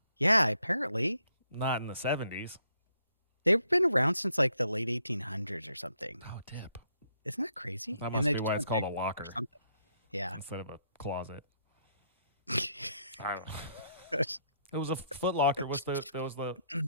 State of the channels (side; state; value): both; inverted; correlation -0.73